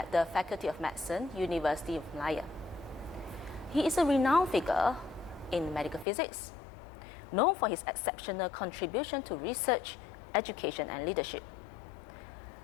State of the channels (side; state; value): right; drops out; at 6.1 s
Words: the Faculty of Medicine, University of Malaya. He is a renowned figure in medical physics, known for his exceptional contribution to research, education, and leadership.